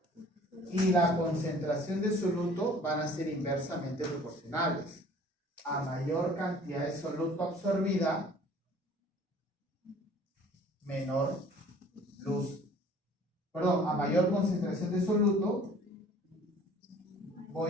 y la concentración de soluto van a ser inversamente proporcionales. A mayor cantidad de soluto absorbida, menor luz. Perdón, a mayor concentración de soluto,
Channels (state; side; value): normal; both; correlation 0.51